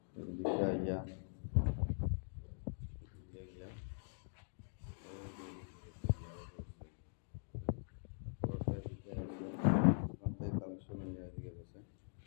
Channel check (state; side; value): silent; right; digital silence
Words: এদিকে আইয়া এদিকে গিয়া পুরোটা এদিকে আছে, ওখান থেকে কালেকশন হয়ে এদিকে গেছে,